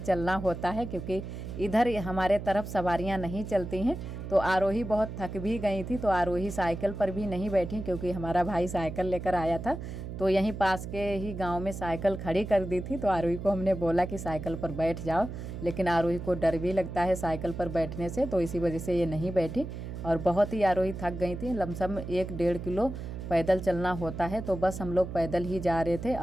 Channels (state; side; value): noise; right; hum, 8 dB below the sound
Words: चलना होता है, क्योंकि इधर हमारे तरफ सवारियां नहीं चलती हैं। तो आरोही बहुत थक भी गई थी, तो आरोही साइकिल पर भी नहीं बैठी, क्योंकि हमारा भाई साइकिल लेकर आया था। तो यहीं पास के ही गांव में साइकिल खड़ी कर दी थी। तो आरोही को हमने बोला कि साइकिल पर बैठ जाओ, लेकिन आरोही को डर भी लगता है साइकिल पर बैठने से, तो इसी वजह से ये नहीं बैठी। और बहुत ही आरोही थक गई थी। लमसम 1-1.5 किलो पैदल चलना होता है। तो बस हम लोग पैदल ही जा रहे थे